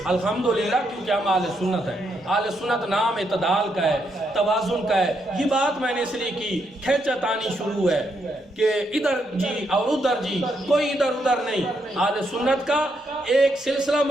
الحمدللہ، کیونکہ ہم اہل سنت ہیں. اہل سنت نام اعتدال کا ہے، توازن کا ہے. یہ بات میں نے اس لیے کی، کھینچا تانی شروع ہے کہ ادھر جی اور ادھر جی، کوئی ادھر ادھر نہیں. اہل سنت کا ایک سلسلہ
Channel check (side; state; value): both; normal; correlation 0.78